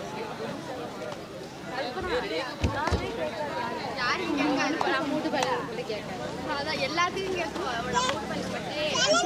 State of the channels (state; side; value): identical; both; correlation 1.00